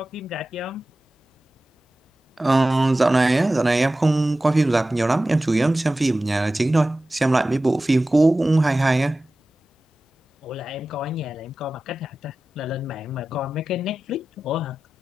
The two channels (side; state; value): both; normal; correlation 0.95